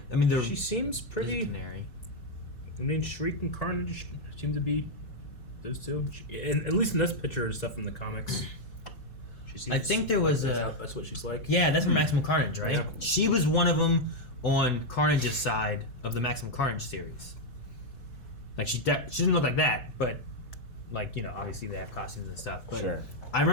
I mean, She seems pretty. Canary. I mean, Shriek and Carnage seem to be those two. At least in this picture and stuff in the comics. She seems I think there was that's what she's like. Yeah, that's from Maximum Carnage, right? Yeah. She was one of them on Carnage's side of the Maximum Carnage series. Like she didn't look like that, but like obviously they have costumes and stuff. But Sure. I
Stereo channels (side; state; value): right; late; 4.7 ms